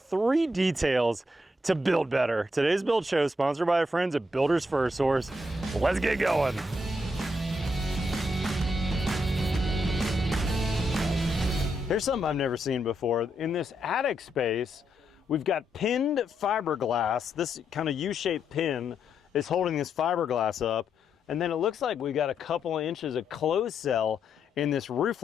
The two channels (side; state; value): both; normal; correlation 0.79